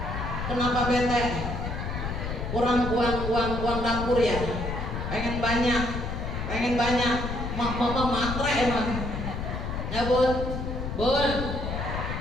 Kenapa bete? Kurang uang dapur ya. Pengen banyak. Mama matre emang. Ya bun,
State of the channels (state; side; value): noise; left; rumble, 4 dB below the sound